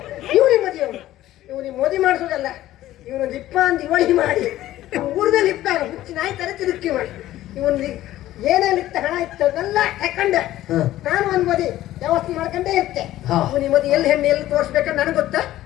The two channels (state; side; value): quieter; right; 14.4 dB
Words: ಇವನಿಗೆ ಮದುವೆ ಇವನಿಗೆ ಮದುವೆ ಮಾಡಿಸೋದಲ್ಲ, ಇವನು ಲಿಪ್ಪ ಅಂತ ಇವಳಿ ಮಾಡಿ ಊರ್ದ ಲಿಪ್ಪ ಹುಚ್ಚಿ ನಾಯಿ ತರ ತಿರುಗಿ ಮಾಡಿ ಇವನ್ ಏನೇನು ಇತ್ತ ಹಣ ಇತ್ತದೆಲ್ಲ ತಕೊಂಡೆ. ನಾನು ಒಂದ್ ಮದಿ ವ್ಯವಸ್ಥೆ ಮಾಡ್ಕೊಂಡೇ ಇರ್ತೆ. ಇವನಿಗೆ ಮದುವೆ ಎಲ್ಲಿ ಹೆಣ್ಣು ಎಲ್ಲಿ ತೋರಿಸ್ಬೇಕಂತ ನನಗೆ ಗೊತ್ತಾ,